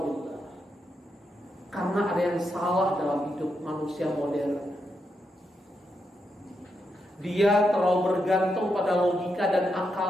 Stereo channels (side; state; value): both; normal; correlation 0.83